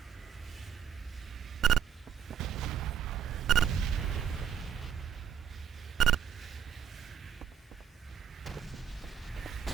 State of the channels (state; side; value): quieter; left; 8.3 dB